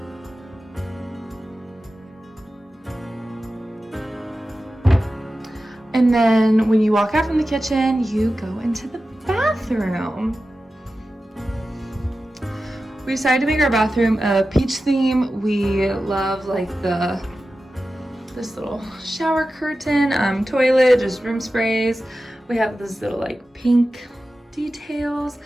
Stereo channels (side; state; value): both; normal; correlation 0.93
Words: And then when you walk out from the kitchen, you go into the bathroom. We decided to make our bathroom a peach theme. We love like this little shower curtain, toilet, just room sprays. We have this little like pink details